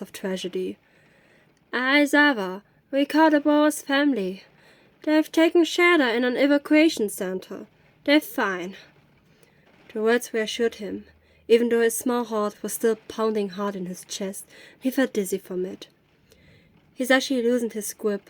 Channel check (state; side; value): identical; both; correlation 1.00